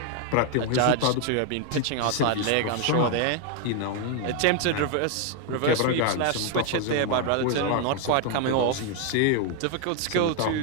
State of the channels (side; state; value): both; different; correlation 0.01